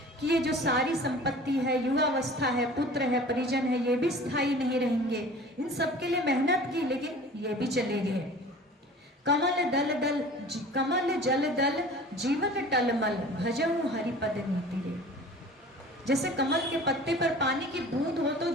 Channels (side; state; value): both; normal; correlation 0.43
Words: कि ये जो सारी संपत्ति है, युवावस्था है, पुत्र है, परिजन है, ये भी स्थायी नहीं रहेंगे। इन सब के लिए मेहनत की, लेकिन ये भी चले गए। कमल जल दल जीवन टलमल भजऊ हरिपद नीति रे। जैसे कमल के पत्ते पर पानी की बूंद हो तो